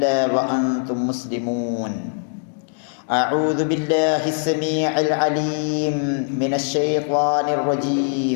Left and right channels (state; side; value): silent; right; 65 dB below the other